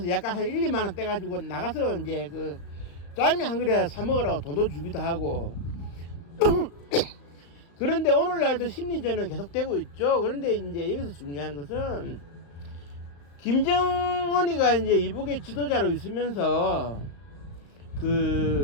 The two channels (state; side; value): late; right; 35 ms